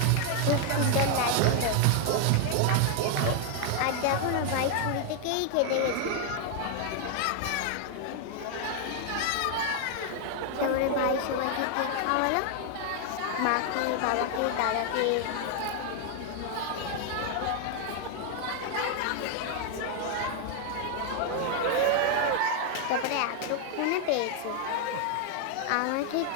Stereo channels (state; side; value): different; both; correlation 0.00